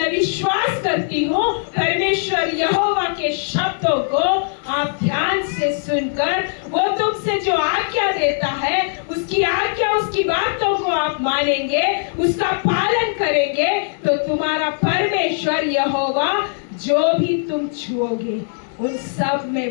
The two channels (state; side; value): silent; right; 64 dB below the other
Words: विश्वास करती हूँ परमेश्वर यहोवा के शब्दों को आप ध्यान से सुनकर वो तुमसे जो आज्ञा देता है उसकी आज्ञा, उसकी बातों को आप मानेंगे, उसका पालन करेंगे तो तुम्हारा परमेश्वर यहोवा जो भी तुम छुओगे उन सब